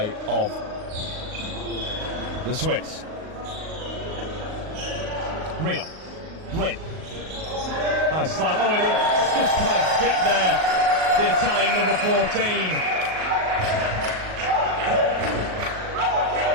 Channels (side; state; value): left; late; 38 ms